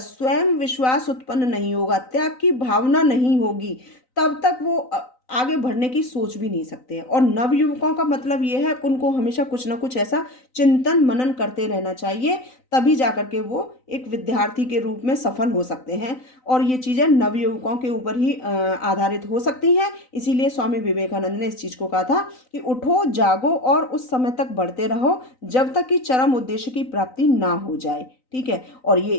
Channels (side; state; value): right; late; 3.9 ms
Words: विश्वास उत्पन्न नहीं होगा, त्याग की भावना नहीं होगी, तब तक वो आगे बढ़ने की सोच भी नहीं सकते हैं। और नवयुवकों का मतलब ये है, उनको हमेशा कुछ ना कुछ ऐसा चिंतन मनन करते रहना चाहिए, तभी जाकर के वो एक विद्यार्थी के रूप में सफल हो सकते हैं। और ये चीज़ें नवयुवकों के ऊपर ही आधारित हो सकती हैं। इसीलिए स्वामी विवेकानंद ने इस चीज़ को कहा था कि उठो जागो और उस समय तक बढ़ते रहो जब तक कि चरम उद्देश्य की प्राप्ति ना हो जाए। ठीक है, और ये